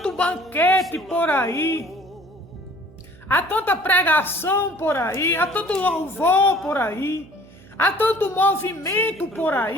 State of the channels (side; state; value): right; noise; hum, 24 dB below the sound